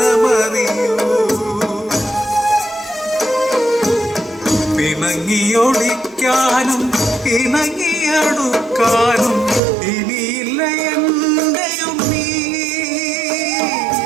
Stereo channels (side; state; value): left; drops out; at 9.6 s